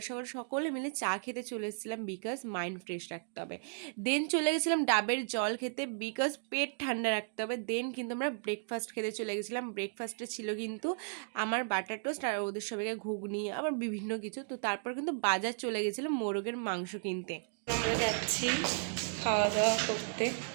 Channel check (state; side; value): silent; left; digital silence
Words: সকাল সকলে মিলে চা খেতে চলে এসেছিলাম, বিকজ মাইন্ড ফ্রেশ রাখতে হবে। দেন চলে গেছিলাম ডাবের জল খেতে, বিকজ পেট ঠান্ডা রাখতে হবে। দেন কিন্তু আমরা ব্রেকফাস্ট খেতে চলে গেছিলাম। ব্রেকফাস্টে ছিল কিন্তু আমার বাটার টোস্ট আর ওদের সবাইকে ঘুগনি, আবার বিভিন্ন কিছু। তো তারপর কিন্তু বাজার চলে গেছিলাম মোরগের মাংস কিনতে। আমরা যাচ্ছি খাওয়া দাওয়া করতে